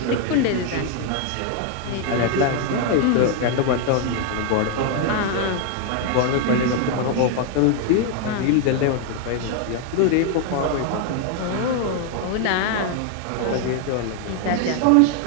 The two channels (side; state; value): both; different; correlation 0.00